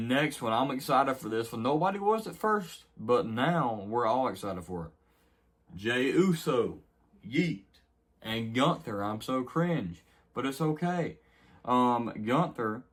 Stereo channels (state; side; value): identical; both; correlation 1.00